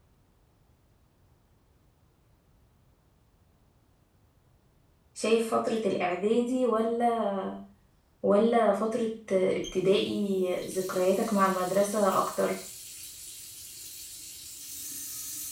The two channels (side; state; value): both; identical; correlation 1.00